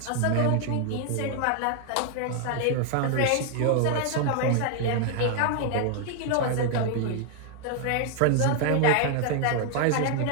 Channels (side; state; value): both; different; correlation 0.00